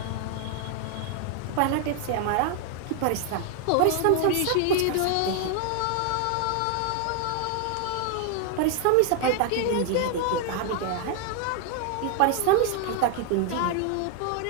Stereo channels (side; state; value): both; different; correlation 0.00